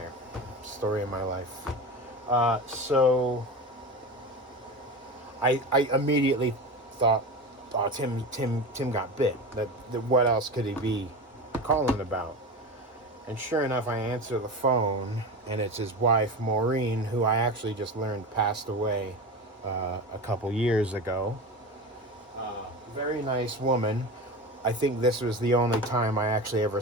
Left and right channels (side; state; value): both; normal; correlation 0.27